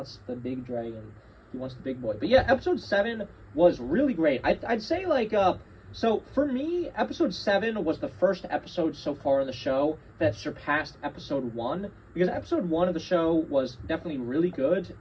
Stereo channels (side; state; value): both; identical; correlation 1.00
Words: the big dragon. He wants the big boy. But yeah, episode 7 was really great. I'd say like, so for me, episode 7 was the first episode so far in the show that surpassed episode 1, because episode 1 of the show was definitely really good,